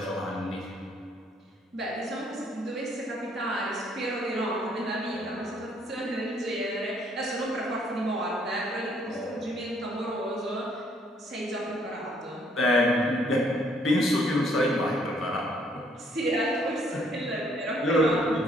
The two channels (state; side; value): normal; both; correlation 0.65